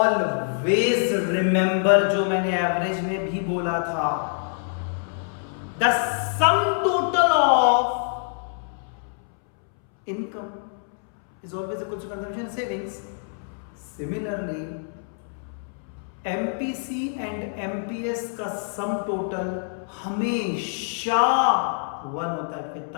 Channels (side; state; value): right; silent; 61 dB below the other